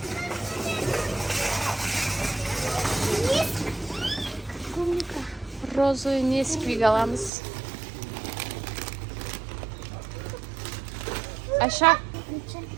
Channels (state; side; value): drops out; left; at 7.3 s